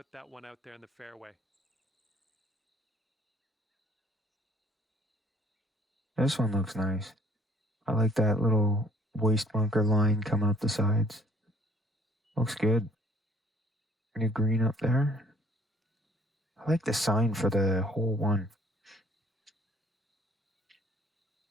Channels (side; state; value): both; normal; correlation 0.58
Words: that one out there in the fairway. This one looks nice. I like that little waist bunker line coming up the sides. Looks good. New green up there. I like the sign for the hole one.